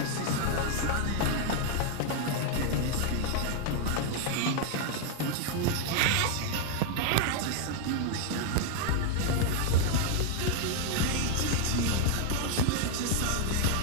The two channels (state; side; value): different; both; correlation 0.00